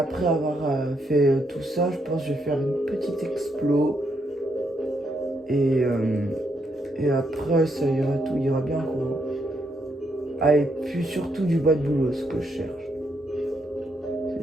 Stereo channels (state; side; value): normal; both; correlation 0.77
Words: avoir fait tout ça, je pense que je vais faire une petite explo. Et après, ça ira, tout ira bien quoi. Ah, et puis surtout du bois de boulot, ce que je cherche.